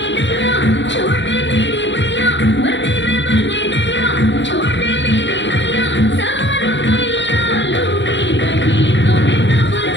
गया, छोटे मेरे भैया, वर्दी में बने गया, छोटे मेरे भैया, सवारों भैया लूंगी, कहीं तुम्हें तब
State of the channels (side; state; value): right; late; 0.53 ms